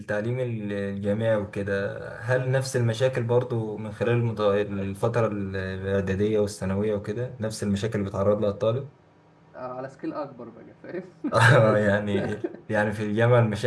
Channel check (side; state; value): both; identical; correlation 1.00